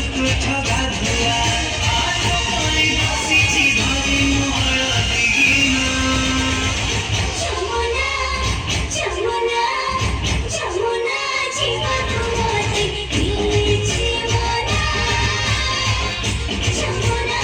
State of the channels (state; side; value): identical; both; correlation 1.00